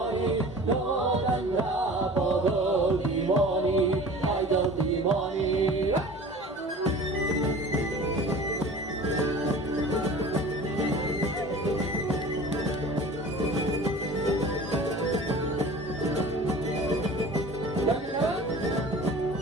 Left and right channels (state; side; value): normal; both; correlation 0.41